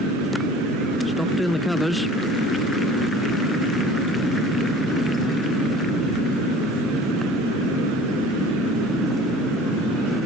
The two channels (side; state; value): both; normal; correlation 0.45